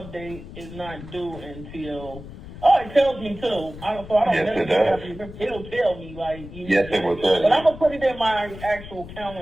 is not due until. Oh, it tells me too. So I don't. Yes, it does. It'll tell me Yes, it will tell you. But I'm gonna put it in my actual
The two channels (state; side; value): noise; left; rumble, 14 dB below the sound